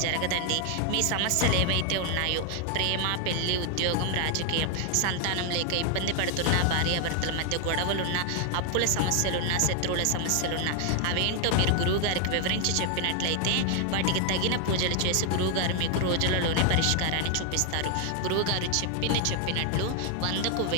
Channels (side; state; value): both; different; correlation 0.00